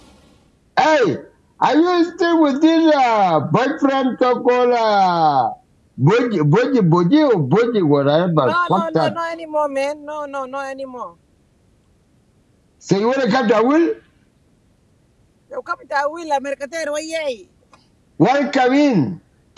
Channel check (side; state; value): both; identical; correlation 1.00